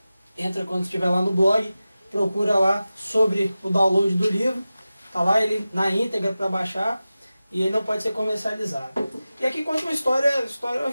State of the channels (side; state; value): both; inverted; correlation -0.95